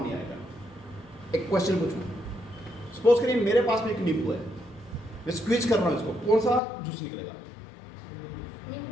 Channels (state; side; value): drops out; right; at 6.6 s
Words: नहीं आएगा। एक क्वेश्चन पूछूं, सपोज करिए मेरे पास में एक नींबू है, मैं स्क्वीज कर रहा हूं इसको, कौन सा जूस निकलेगा?